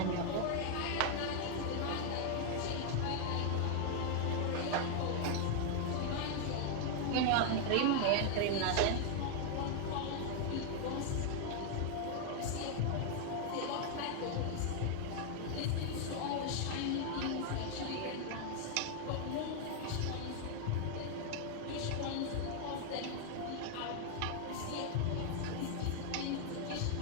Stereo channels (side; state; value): both; different; correlation 0.00